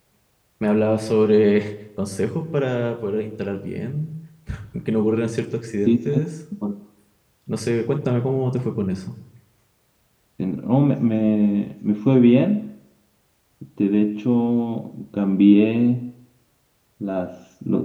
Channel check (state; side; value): identical; both; correlation 1.00